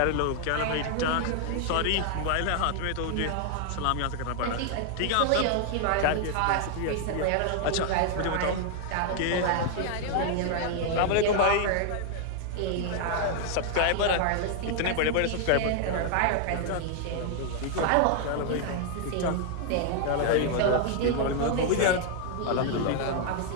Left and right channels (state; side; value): different; both; correlation 0.00